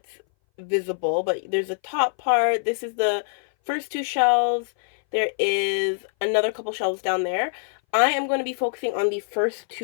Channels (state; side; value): silent; right; 59 dB below the other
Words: visible, but there's a top part. This is the first two shelves. There is another couple shelves down there. I am going to be focusing on the first